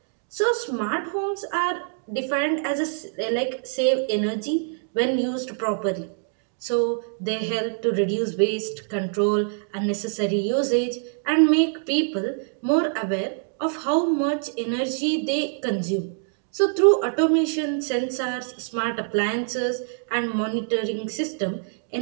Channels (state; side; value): silent; left; 62 dB below the other